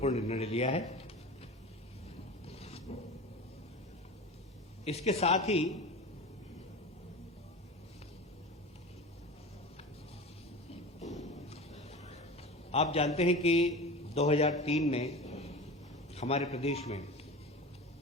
निर्णय लिया है। इसके साथ ही आप जानते हैं कि 2003 में हमारे प्रदेश में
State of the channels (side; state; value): both; normal; correlation 0.31